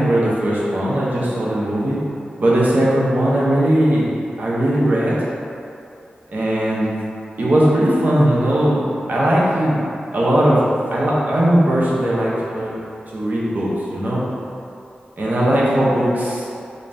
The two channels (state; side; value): normal; both; correlation 0.93